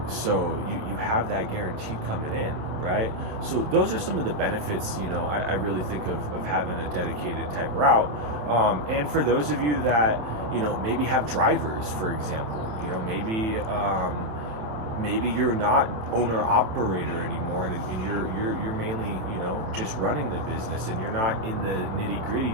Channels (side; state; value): left; late; 27 ms